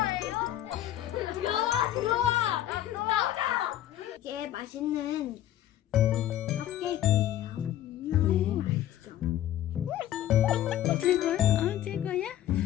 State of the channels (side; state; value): right; quieter; 12.5 dB